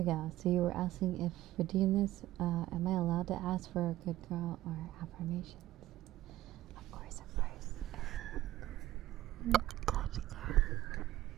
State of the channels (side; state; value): left; quieter; 15.0 dB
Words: go. So you were asking if redeem this, am I allowed to ask for a good girl or affirmations? Of course, of course. Good girl.